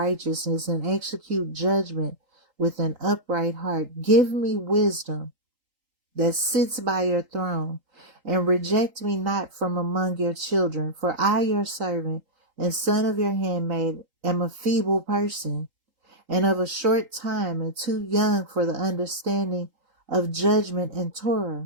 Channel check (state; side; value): late; left; 3.8 ms